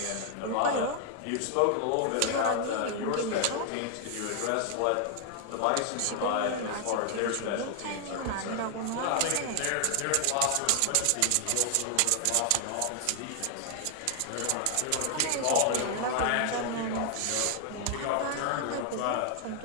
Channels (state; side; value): different; both; correlation 0.00